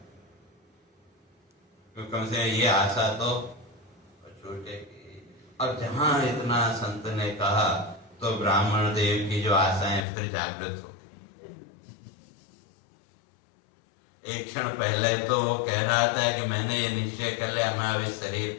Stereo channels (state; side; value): drops out; right; at 10.1 s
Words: क्योंकि कम से ये आशा तो छूटेगी। और जहां इतना संत ने कहा तो ब्राह्मण देव की जो आशाएं फिर जागृत हो गई। एक क्षण पहले तो कह रहा था कि मैंने ये निश्चय कर लिया मैं अब इस शरीर